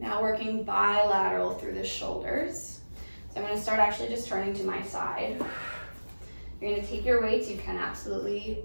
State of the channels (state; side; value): inverted; both; correlation -1.00